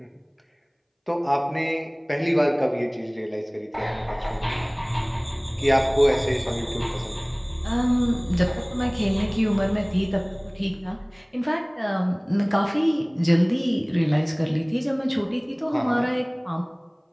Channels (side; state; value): both; identical; correlation 1.00